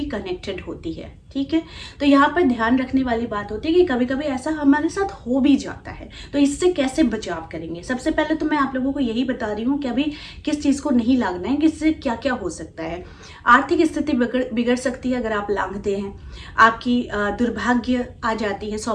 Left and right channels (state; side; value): identical; both; correlation 1.00